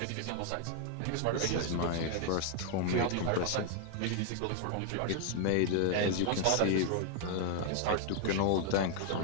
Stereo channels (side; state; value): both; different; correlation 0.00